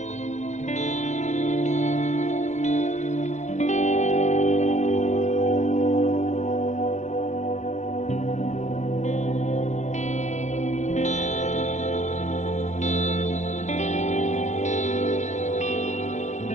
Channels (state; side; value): late; right; 0.34 ms